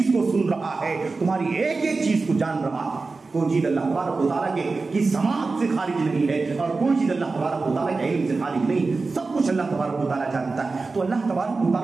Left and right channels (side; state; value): left; quieter; 3.9 dB